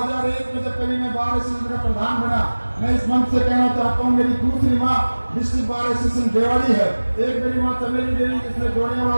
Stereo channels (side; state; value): both; inverted; correlation -1.00